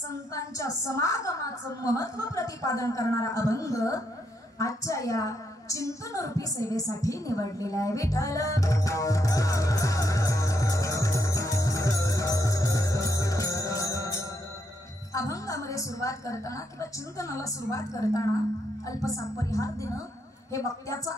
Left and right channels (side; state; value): both; normal; correlation 0.78